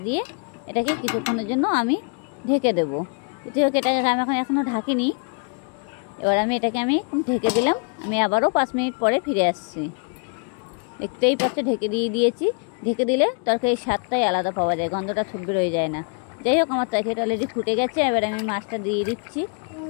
দিয়ে এটাকে কিছুক্ষণের জন্য আমি ঢেকে দেবো। যেটি হোক, এটাকে আমি এখনও ঢাকিনি। এবার আমি এটাকে ঢেকে দিলাম। আমি আবারও 5 মিনিট পরে ফিরে আসছি। দেখতেই পাচ্ছে ঢেকে দিয়েছি। ঢেকে দিলে তরকারির স্বাদটাই আলাদা পাওয়া যায়, গন্ধটা ছুটবে রয়ে যায় না। যাই হোক, আমার তরকারিটা অলরেডি ফুটে গেছে। এবার আমি মাছটা দিয়ে দিচ্ছি।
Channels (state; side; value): quieter; right; 39.9 dB